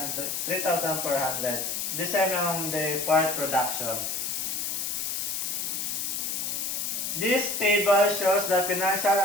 The same on the fourth production. This table shows the financial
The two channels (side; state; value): left; noise; hiss, 2 dB below the sound